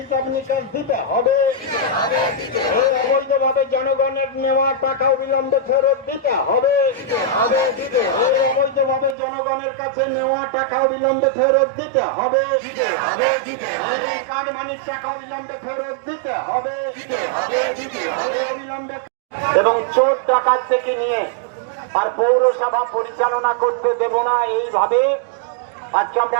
নিকাশ দিতে হবে। এই অবৈধভাবে জনগণের নেওয়া টাকা অবিলম্বে ফেরত দিতে হবে। এই অবৈধভাবে জনগণের কাছে নেওয়া টাকা অবিলম্বে ফেরত দিতে হবে। এই কাটমানির টাকা অবিলম্বে ফেরত দিতে হবে। অবিলম্বে এবং চোর ডাকাত থেকে নিয়ে আর পৌরসভা পরিচালনা করতে দেব না, এইভাবে আজকে আমরা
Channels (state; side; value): drops out; left; at 9.2 s